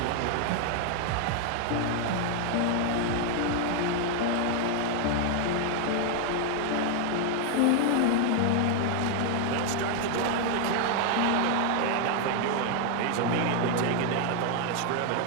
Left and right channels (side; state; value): both; different; correlation 0.01